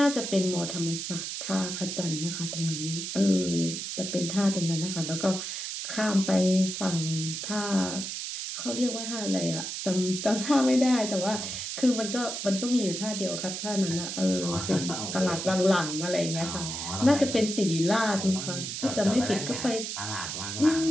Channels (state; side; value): noise; right; hiss, 5 dB below the sound